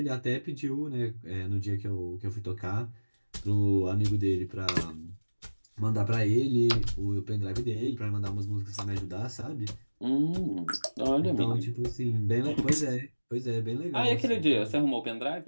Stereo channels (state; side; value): inverted; both; correlation -1.00